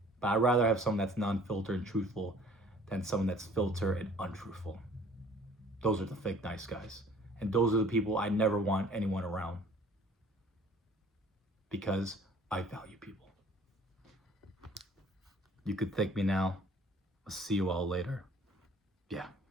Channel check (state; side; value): normal; both; correlation 0.53